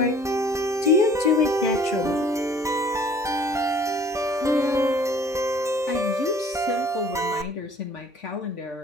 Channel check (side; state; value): both; normal; correlation 0.53